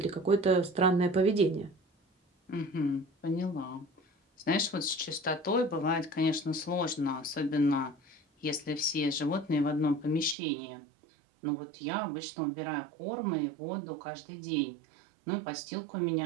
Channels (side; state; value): left; drops out; at 10.4 s